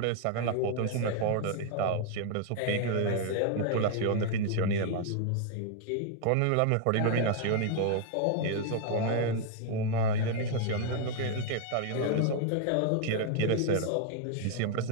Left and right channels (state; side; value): different; both; correlation 0.00